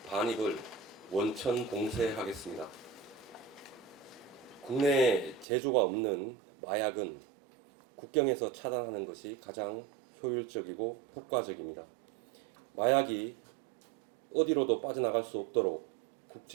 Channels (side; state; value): left; drops out; at 5.5 s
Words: 반입을 원천 봉쇄하겠습니다. 국내에 제조가 없는 마약은 국경에서 차단하는 것이 가장 효율적이고 효과적입니다. 마약이 어디로도 빠져나갈 수 없도록